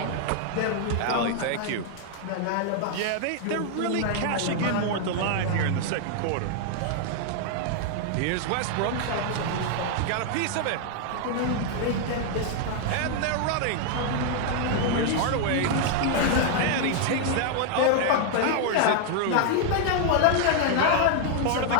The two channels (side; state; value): both; different; correlation 0.00